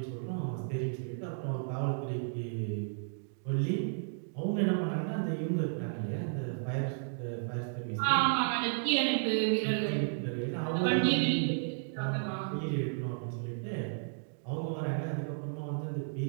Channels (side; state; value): left; silent; digital silence